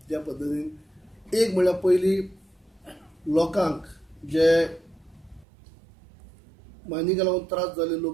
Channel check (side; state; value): left; drops out; at 5.5 s